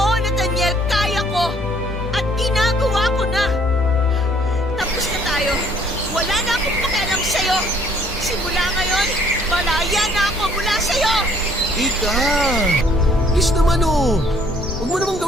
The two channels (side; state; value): both; normal; correlation 0.61